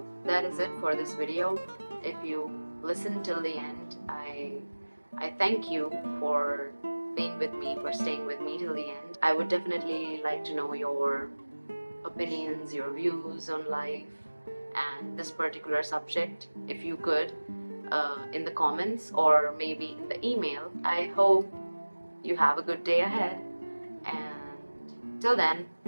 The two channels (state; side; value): inverted; both; correlation -1.00